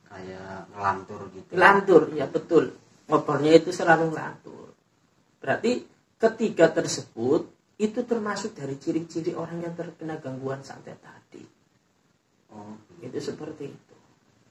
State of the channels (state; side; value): identical; both; correlation 1.00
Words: Kayak ngelantur gitu. Ngelantur, ya betul. Ngobrolnya itu selalu ngelantur. Berarti ketiga tersebut itu termasuk dari ciri-ciri orang yang terkena gangguan santet tadi. Oh, itu seperti itu.